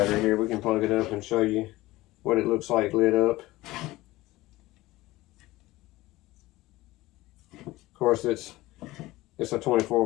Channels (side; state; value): right; quieter; 18.5 dB